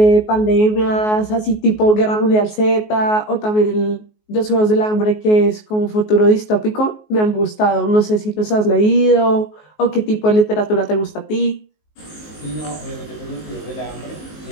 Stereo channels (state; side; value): late; right; 19 ms